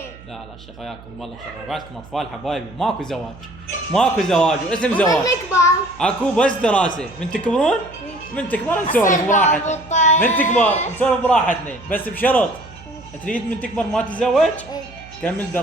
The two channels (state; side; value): noise; right; hum, 20 dB below the sound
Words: لا شيخ وياكم والله شيخ، بعدكم اطفال حبايبي، ماكو زواج واسم زواج. اكو بس دراسه. من تكبرون من تكبر نسولف براحتنا. من تكبر نسولف براحتنا، بس بشرط تريد من تكبر ما تتزوج كمل